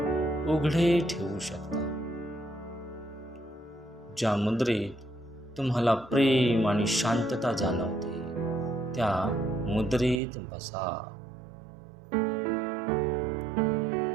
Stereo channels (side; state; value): left; drops out; at 10.2 s